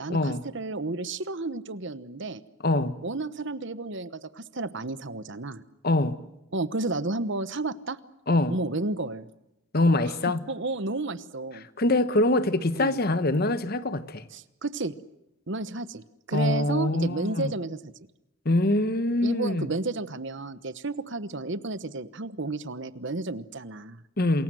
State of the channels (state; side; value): normal; both; correlation 0.37